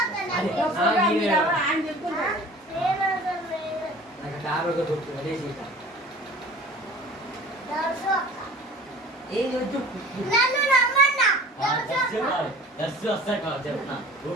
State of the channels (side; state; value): both; normal; correlation 0.43